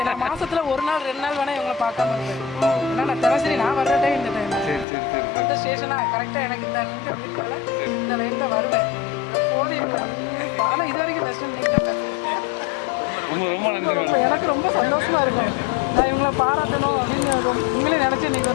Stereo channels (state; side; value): drops out; right; at 4.9 s